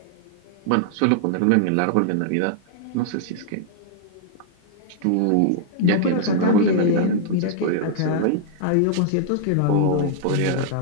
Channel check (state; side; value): different; both; correlation -0.01